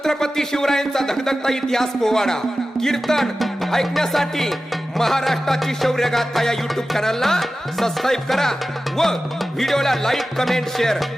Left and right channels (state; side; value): normal; both; correlation 0.94